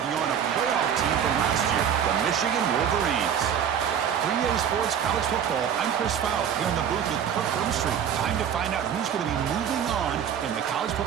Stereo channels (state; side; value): quieter; left; 8.5 dB